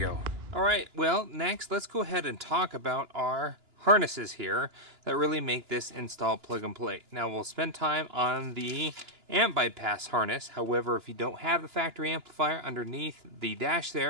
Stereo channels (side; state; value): left; late; 2.9 ms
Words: All right, well, next let's go ahead and talk about our harnesses here that really make this install plug and play. Now we'll spend time on the amp bypass harness. However, if you don't have the factory amplifier underneath the dash